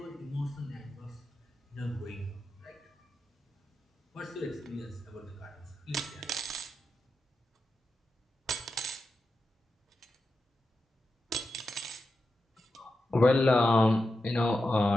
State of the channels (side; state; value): both; normal; correlation 0.89